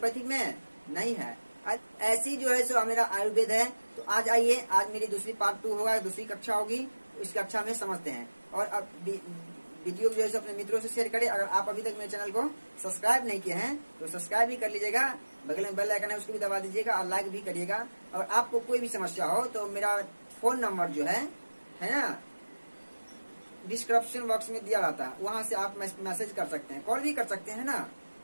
में? नहीं है। ऐसी जो है सो मेरा आयुर्वेद है। तो आज आइए, आज मेरी दूसरी पार्ट 2 होगा, दूसरी कक्षा होगी, इस कक्षा में समझते हैं। और अब वीडियो जो है अपने मित्रों से शेयर करें। अगर आप अभी तक मेरे चैनल को सब्सक्राइब नहीं किए हैं तो सब्सक्राइब भी कर लीजिएगा, बगल में बेल आइकन है उसको भी दबा दीजिएगा और लाइक भी करिएगा। और आपको कोई भी समस्या हो तो मेरा फोन नंबर जो है ना, डिस्क्रिप्शन बॉक्स में दिया रहता है, वहां से आप मैसेज कर सकते हैं, कॉल भी कर सकते हैं ना,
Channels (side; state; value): both; inverted; correlation -1.00